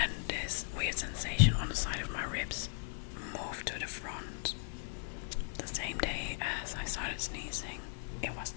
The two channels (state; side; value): silent; right; digital silence